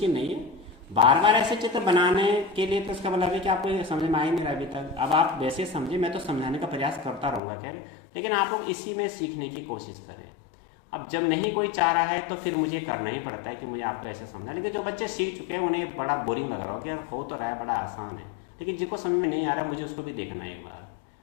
नहीं है। बार बार ऐसे चित्र बनाने के लिए तो इसका मतलब है कि आपको समझ में आ ही नहीं रहा अभी तक। अब आप वैसे समझे, मैं तो समझाने का प्रयास करता रहूँगा खैर, लेकिन आप लोग इसी में सीखने की कोशिश करें। अब जब नहीं कोई चाह रहा है तो फिर मुझे करना ही पड़ता है कि मुझे आपको ऐसे समझा। लेकिन जो बच्चे सीख चुके हैं उन्हें बड़ा बोरिंग लग रहा हो कि यार हो तो रहा है, बड़ा आसान है, लेकिन जिनको समझ में नहीं आ रहा मुझे उसको भी देखना है एक बार।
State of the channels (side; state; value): right; drops out; at 7.4 s